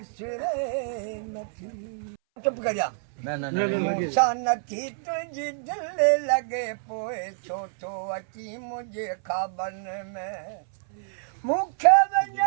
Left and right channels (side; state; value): left; silent; 60 dB below the other